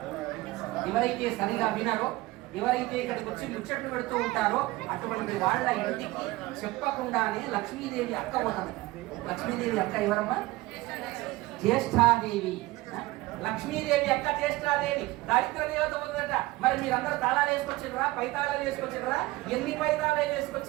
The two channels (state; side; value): quieter; left; 19.7 dB